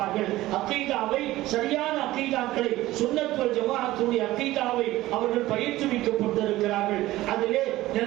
அகீதாவை, சரியான அகீதாக்களை, சுன்னத் வல் ஜமாஅத்துடைய அகீதாவை அவர்கள் பயிற்றுவிக்கப்பட்டிருக்கிறார்கள். அதிலே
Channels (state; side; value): quieter; left; 16.7 dB